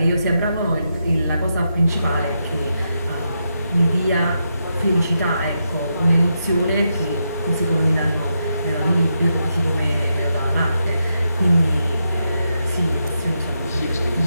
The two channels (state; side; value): inverted; both; correlation -0.84